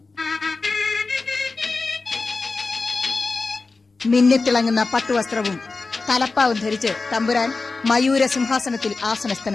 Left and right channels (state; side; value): quieter; right; 3.9 dB